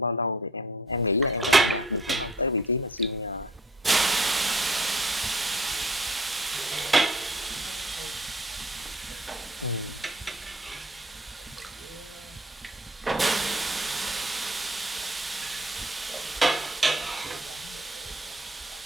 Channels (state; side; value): normal; both; correlation 0.54